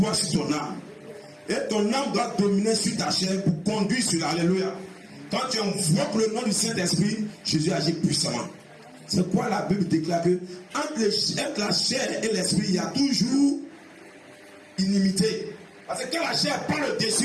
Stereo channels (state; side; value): identical; both; correlation 1.00